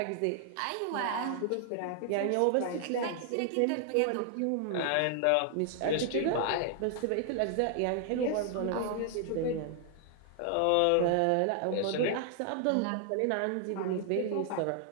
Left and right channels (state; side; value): different; both; correlation 0.00